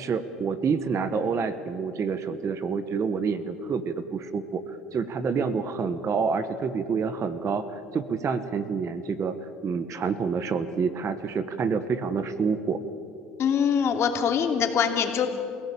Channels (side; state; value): both; normal; correlation 0.60